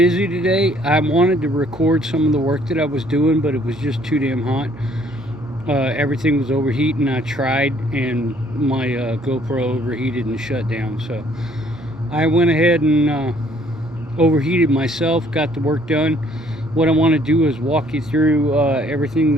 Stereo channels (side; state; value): both; normal; correlation 0.62